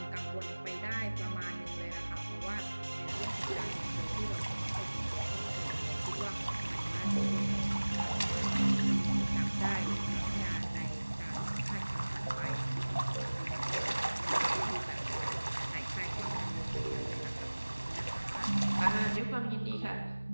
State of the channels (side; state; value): both; inverted; correlation -1.00